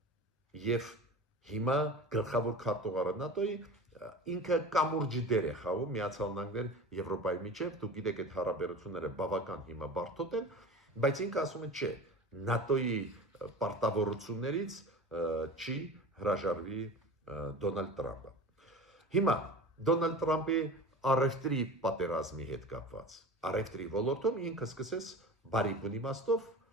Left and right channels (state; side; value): normal; both; correlation 0.35